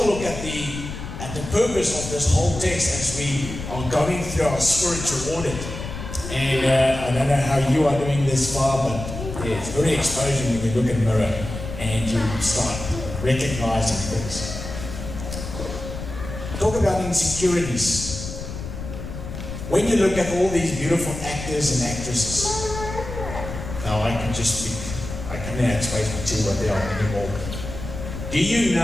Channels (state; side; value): noise; left; rumble, 8 dB below the sound